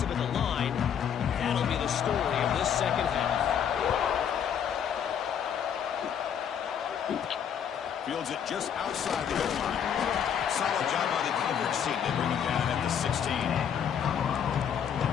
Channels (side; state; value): right; quieter; 8.4 dB